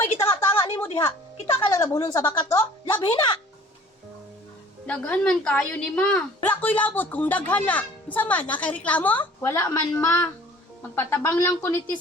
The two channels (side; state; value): both; normal; correlation 0.50